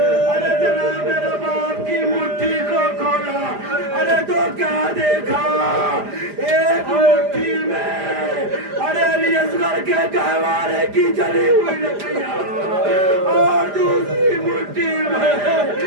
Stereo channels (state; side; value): late; left; 5.0 ms